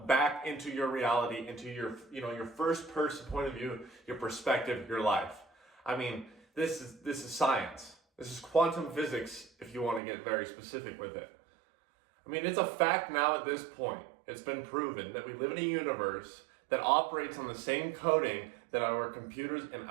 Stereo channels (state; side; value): drops out; left; at 10.0 s